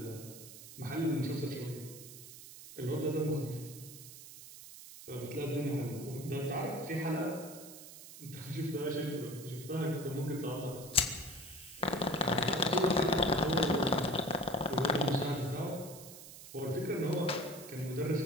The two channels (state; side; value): noise; right; hiss, 15 dB below the sound